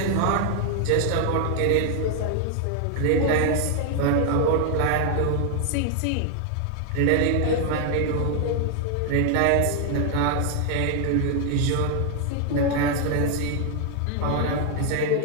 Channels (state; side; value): different; both; correlation 0.00